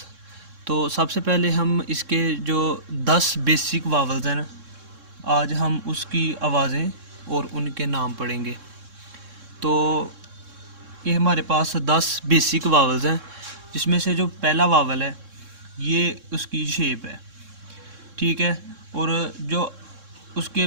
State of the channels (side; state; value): left; late; 3.6 ms